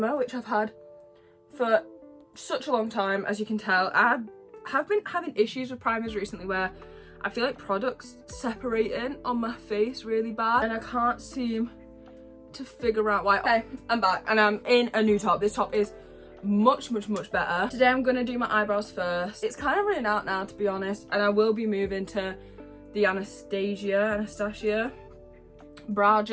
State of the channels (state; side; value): identical; both; correlation 1.00